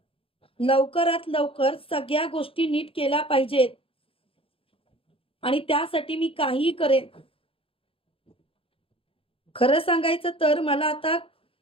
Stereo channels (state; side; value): late; right; 0.27 ms